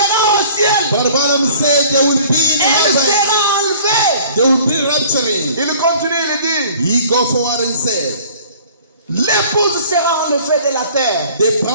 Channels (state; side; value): inverted; both; correlation -0.51